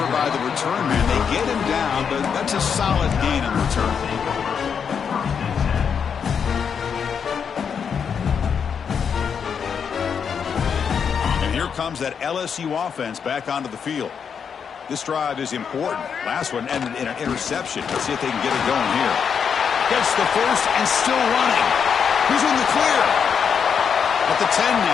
by the return man. They get him down, but that's a solid gain in return. And here comes that LSU offense back onto the field. This drive is important. Last one ended in an interception. Let's see if they can get it going here. Gets the first and still running. He's in the clear. At the 10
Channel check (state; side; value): quieter; right; 6.9 dB